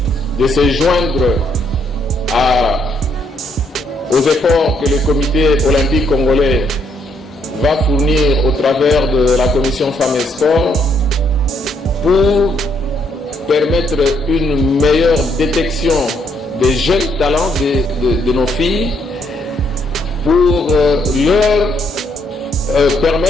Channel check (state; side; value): normal; both; correlation 0.72